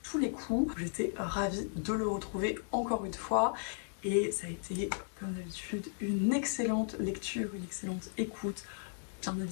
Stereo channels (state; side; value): silent; right; digital silence